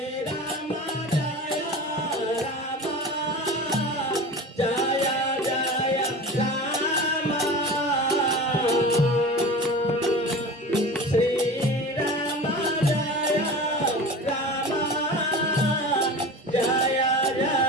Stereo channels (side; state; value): both; normal; correlation 0.33